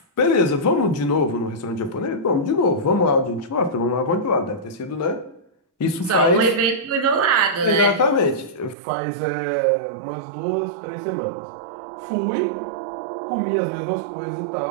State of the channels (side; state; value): left; drops out; at 8.8 s